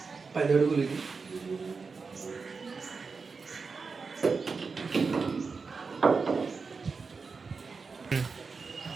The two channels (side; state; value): left; quieter; 4.8 dB